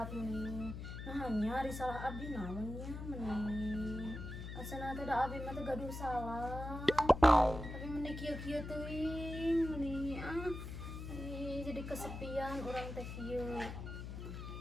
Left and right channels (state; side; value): noise; left; hum, 8 dB below the sound